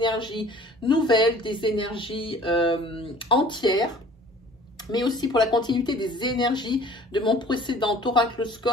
nouvelles, des énergies entières, mais aussi pour la continuité des énergies de mon précédent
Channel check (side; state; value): both; normal; correlation 0.49